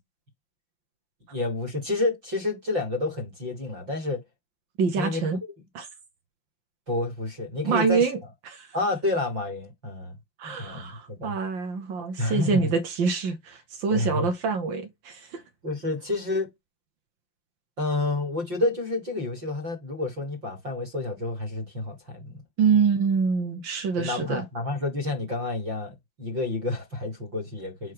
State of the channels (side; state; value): left; late; 5.7 ms